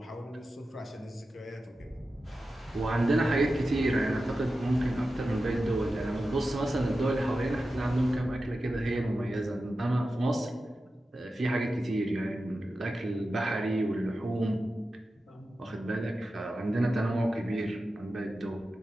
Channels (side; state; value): both; normal; correlation 0.92